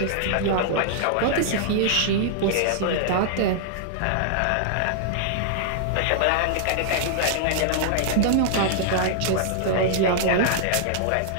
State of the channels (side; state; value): both; different; correlation -0.01